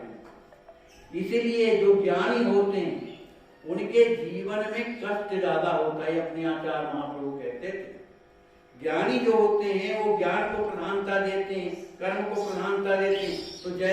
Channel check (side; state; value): both; identical; correlation 1.00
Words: इसीलिए जो ज्ञानी होते हैं उनके जीवन में कष्ट ज्यादा होता है। अपने आचार्य महाप्रभु कहते थे ज्ञानी जो होते हैं वो ज्ञान को प्रधानता देते हैं, कर्म को प्रधानता देते हैं, तो